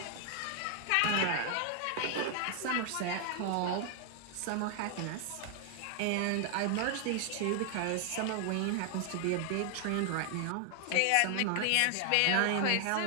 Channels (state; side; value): different; both; correlation 0.00